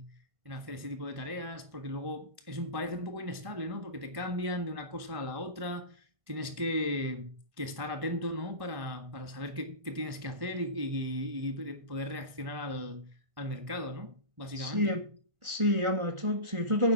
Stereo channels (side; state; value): left; late; 1.5 ms